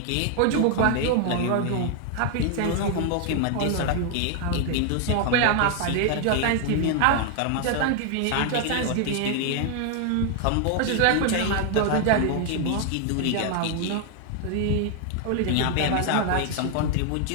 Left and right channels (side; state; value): both; different; correlation 0.00